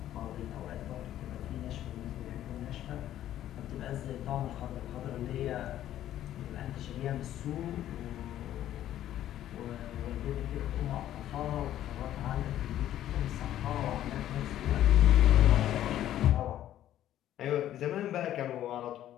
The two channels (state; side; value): quieter; right; 12.3 dB